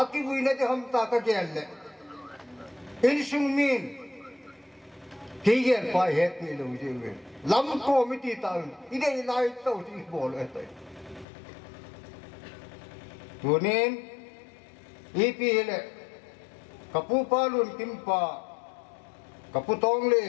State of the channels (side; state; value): right; drops out; at 11.2 s